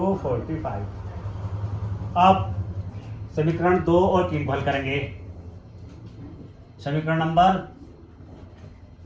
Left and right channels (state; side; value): identical; both; correlation 1.00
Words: 45। अब समीकरण 2 और 3 को हल करेंगे। समीकरण नंबर